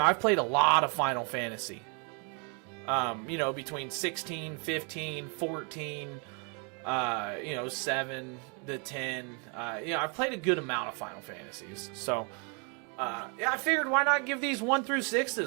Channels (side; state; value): left; quieter; 36.2 dB